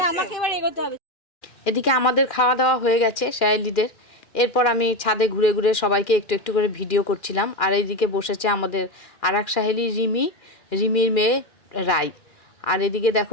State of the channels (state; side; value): late; right; 2.4 ms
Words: আমাকে এবার এগোতে হবে। এদিকে আমাদের খাওয়া দাওয়া হয়ে গেছে সাহেলিদের। এরপর আমি ছাদে ঘুরে ঘুরে সবাইকে একটু একটু করে ভিডিও করছিলাম। আর এইদিকে বসেছে আমাদের আর এক সাহেলি রিমির মেয়ে রাই। আর এদিকে